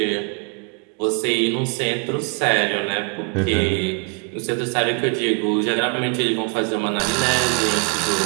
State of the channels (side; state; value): left; quieter; 35.2 dB